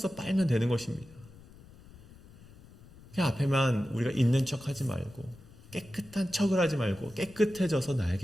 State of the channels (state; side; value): noise; left; rumble, 21 dB below the sound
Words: 빨면 되는 것입니다. 그냥 앞에만 우리가 있는 척하지 말고 깨끗한 척을 하지 말고 깨끗해져서